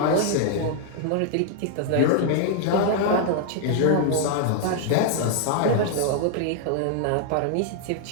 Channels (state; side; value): different; both; correlation 0.00